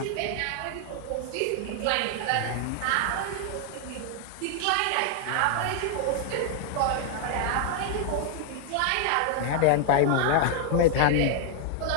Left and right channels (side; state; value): both; different; correlation 0.00